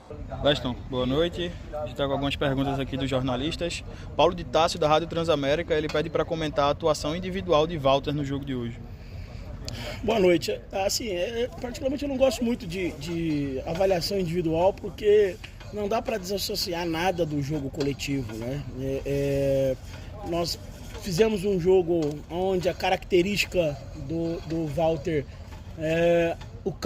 Leston, boa noite. A gente está com algumas perguntas aqui dos jornalistas. Paulo de Tássio, da Rádio Transamérica, ele pede para comentar a atuação individual de Walter no jogo de hoje. Boa noite. Assim, particularmente eu não gosto muito de avaliação individual, porque não dá para desassociar nada do jogo coletivo, né? Nós fizemos um jogo onde a característica do Walter, o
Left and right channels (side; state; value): both; identical; correlation 1.00